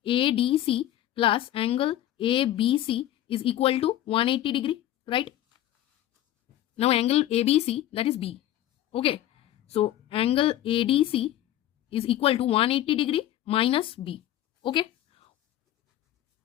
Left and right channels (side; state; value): right; quieter; 12.9 dB